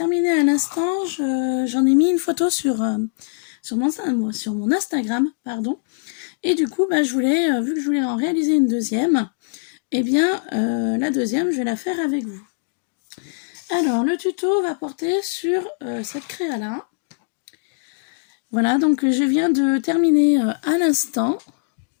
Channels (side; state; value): right; silent; digital silence